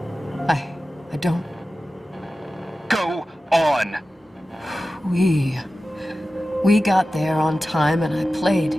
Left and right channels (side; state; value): both; normal; correlation 0.95